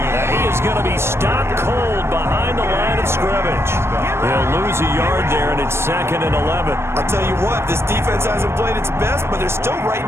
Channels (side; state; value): left; late; 0.12 ms